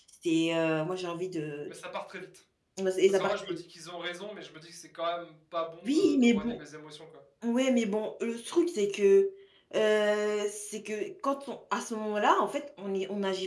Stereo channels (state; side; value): identical; both; correlation 1.00